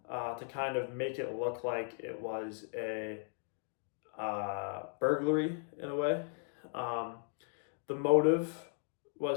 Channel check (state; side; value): silent; right; 53 dB below the other